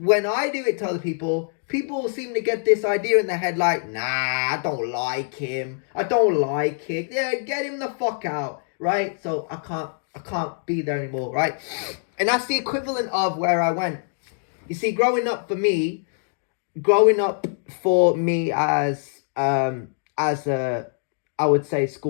I do it to other people seem to get this idea in their head like, nah, I don't like him. I don't like it. Yeah, get him the fuck out, right? So I can't. I can't be there anymore, right? And that's the equivalent of where I went. You see, growing up for me as a, I would say,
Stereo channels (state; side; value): silent; right; digital silence